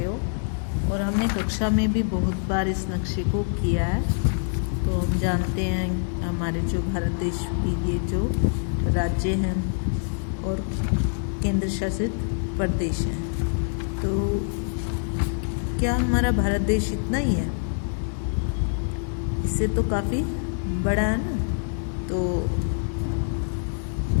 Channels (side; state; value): right; silent; digital silence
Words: हो और हमने कक्षा में भी बहुत बार इस नक्शे को किया है। तो हम जानते हैं हमारे जो भारत देश की ये जो राज्य हैं और केंद्र शासित प्रदेश हैं, तो क्या हमारा भारत देश इतना ही है? इससे तो काफ़ी बड़ा है ना। तो